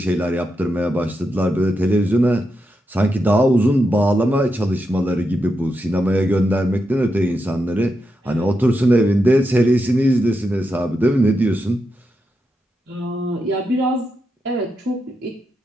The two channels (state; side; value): normal; both; correlation 0.86